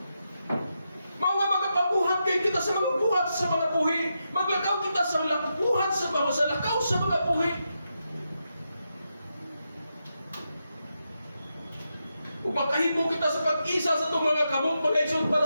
Mao nga magapabuhat kay kita sa mga buhat sa mga buhi. Maglakaw kita sa buhat sa lakaw sa mga buhi. Upakahimo kita sa pag-isa sa itong mga kamot mga igsoon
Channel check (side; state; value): both; inverted; correlation -0.86